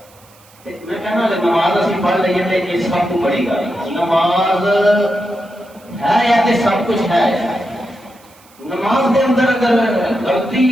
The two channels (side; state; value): right; noise; hiss, 28 dB below the sound